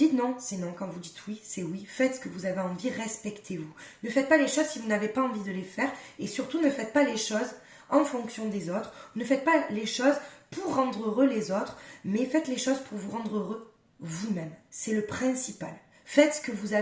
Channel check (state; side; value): identical; both; correlation 1.00